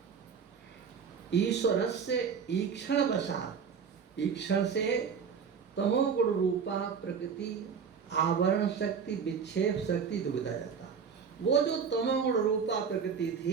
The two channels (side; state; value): left; quieter; 6.4 dB